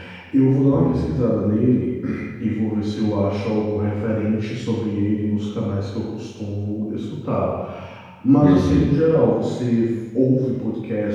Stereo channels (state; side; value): identical; both; correlation 1.00